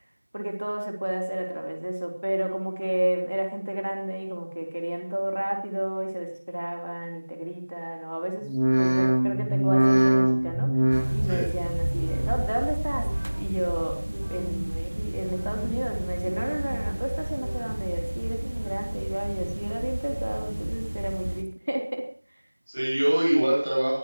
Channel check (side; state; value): both; inverted; correlation -1.00